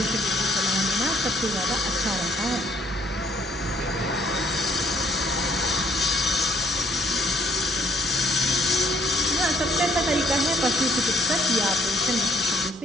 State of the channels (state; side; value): normal; both; correlation 0.64